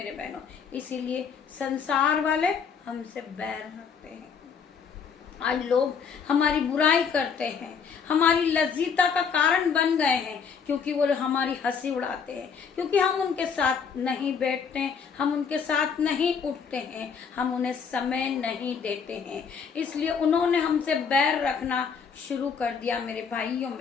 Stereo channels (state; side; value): quieter; right; 6.3 dB